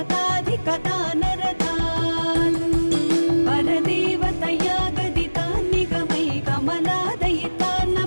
नरतान् परदेवतया गदितान् निगमै कमलादयितान्न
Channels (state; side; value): inverted; both; correlation -1.00